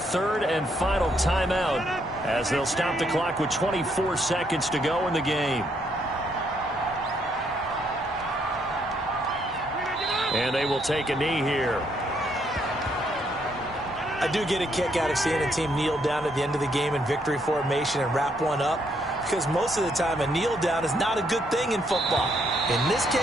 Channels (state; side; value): normal; both; correlation 0.72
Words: and final timeout as they'll stop the clock with 24 seconds to go in the game. And they will take a knee here. I do get a kick out of seeing a team kneel down at the end of the game in victory formation and wrap one up, because most of the time a kneel down is not a good thing in football. In this